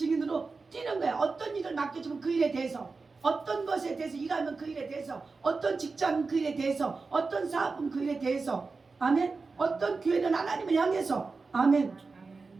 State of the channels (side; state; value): left; quieter; 4.2 dB